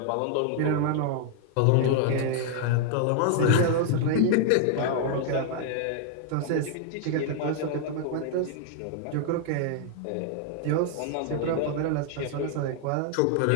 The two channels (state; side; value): different; both; correlation 0.00